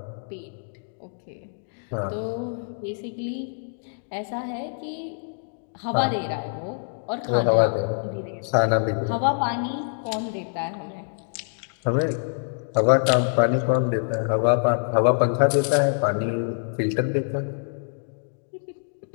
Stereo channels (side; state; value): right; silent; digital silence